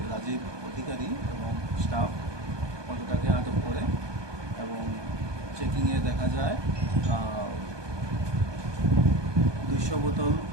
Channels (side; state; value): left; late; 1.2 ms